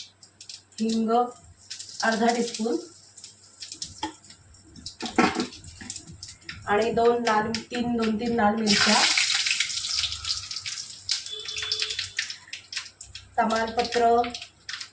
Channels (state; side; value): identical; both; correlation 1.00